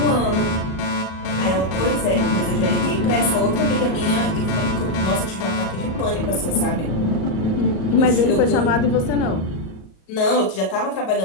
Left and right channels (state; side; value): late; right; 37 ms